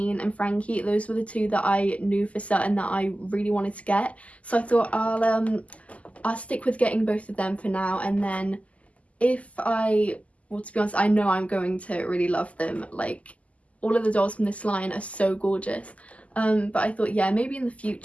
and Frankie. Those were the two that I knew for certain that I really wanted to get. So I thought I'll stick with getting both of them for now, and then well, to be honest, I know I'm going to really love them. Like, all of the dolls from this line are so gorgeous. But I thought, yeah, maybe in the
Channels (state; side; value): late; right; 0.068 ms